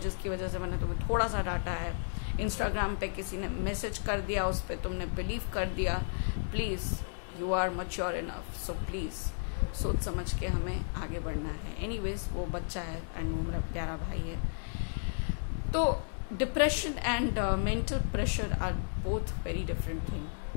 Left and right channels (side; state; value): right; silent; 56 dB below the other